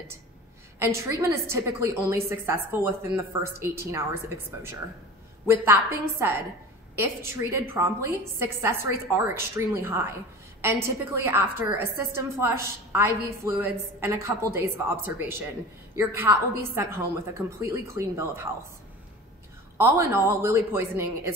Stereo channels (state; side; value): normal; both; correlation 0.36